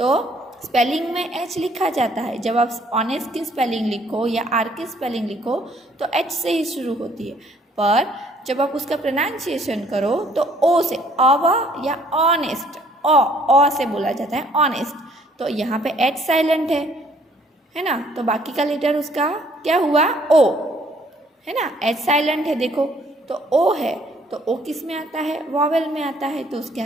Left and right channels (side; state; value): both; normal; correlation 0.62